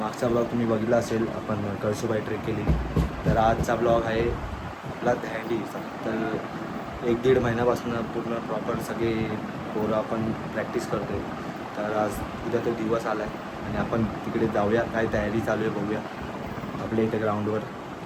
मागचा ब्लॉग तुम्ही बघितला असेल, आपण कळसुबाई ट्रेक केली. तर आजचा ब्लॉग आहे आपला दहंडीचा. तर 1-1.5 महिन्यापासून पूर्ण प्रॉपर सगळे पोरं आपण प्रॅक्टिस करतो आहे. तर आज उद्या तो दिवस आला आहे आणि आपण तिकडे जाऊया, काय तयारी चालू आहे बघूया आपल्या इथे ग्राउंडवर.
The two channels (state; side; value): identical; both; correlation 1.00